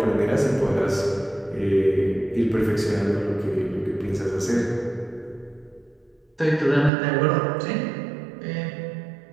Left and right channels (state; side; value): drops out; left; at 6.9 s